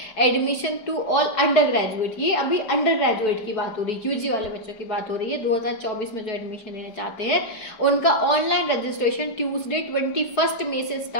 admission to all undergraduate. ये अभी अंडर ग्रेजुएट की बात हो रही है, UG वाले बच्चों की बात हो रही है। 2024 में जो एडमिशन लेना चाहते हैं उनका ऑनलाइन रजिस्ट्रेशन ट्यूसडे 21 मई से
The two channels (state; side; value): late; right; 4.7 ms